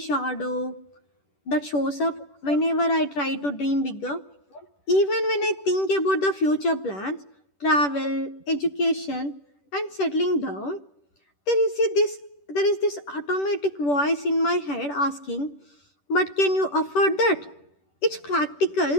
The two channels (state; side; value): late; right; 10 ms